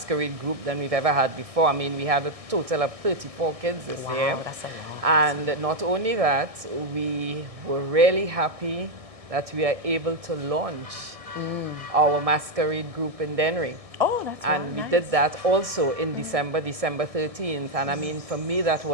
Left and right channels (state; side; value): late; left; 1.6 ms